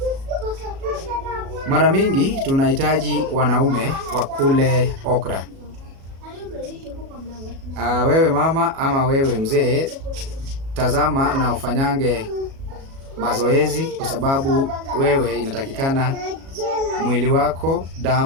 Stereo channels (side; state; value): left; late; 37 ms